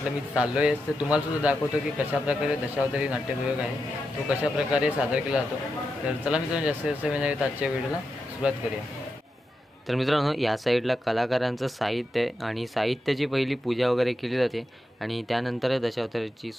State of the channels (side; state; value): both; normal; correlation 0.87